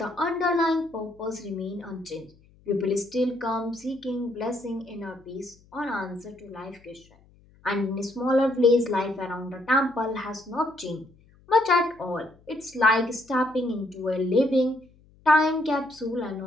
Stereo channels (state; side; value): noise; left; hum, 29 dB below the sound